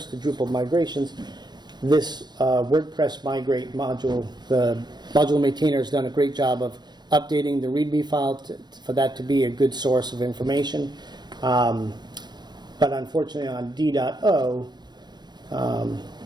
to Drupal migrations. This WordPress migrate module, the module maintainer has done a great job of updating the Readme file for that to be a good source of information. But unfortunately on D.O, the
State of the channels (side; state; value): left; late; 0.21 ms